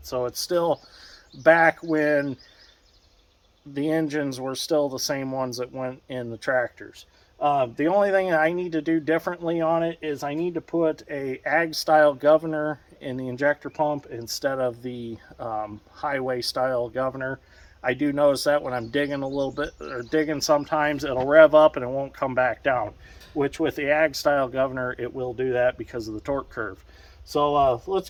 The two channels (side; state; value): both; identical; correlation 1.00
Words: So it's still back when the engines were still the same ones that went in the tractors. The only thing that I need to do differently on it is I need to put a ag style governor in the injector pump instead of the highway style governor. I do notice that when I'm digging a little bit, or digging sometimes, it'll rev up and it won't come back down, which with the ag style governor it will do that because of the torque curve. So let's